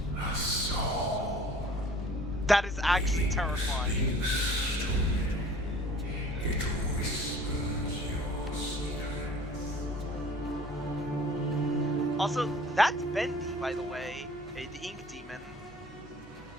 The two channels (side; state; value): both; normal; correlation 0.49